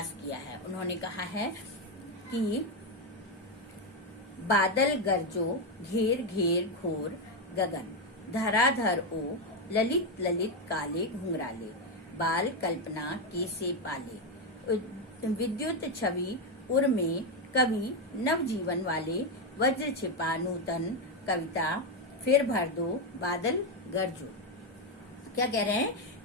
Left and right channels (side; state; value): both; normal; correlation 0.07